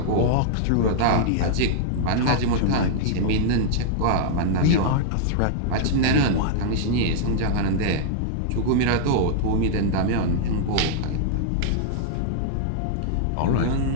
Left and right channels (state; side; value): different; both; correlation -0.01